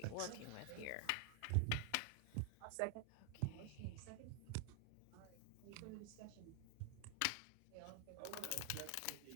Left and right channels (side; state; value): both; different; correlation 0.00